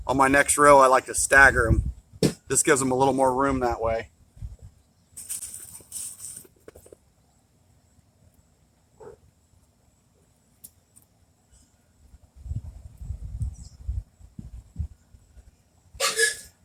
on my next row I like to stagger them. This gives them a little more room that way.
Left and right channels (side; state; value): both; identical; correlation 1.00